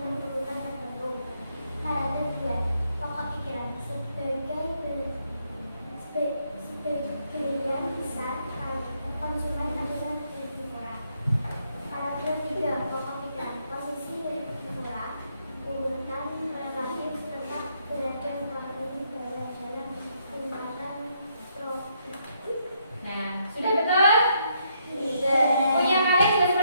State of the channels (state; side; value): inverted; both; correlation -0.75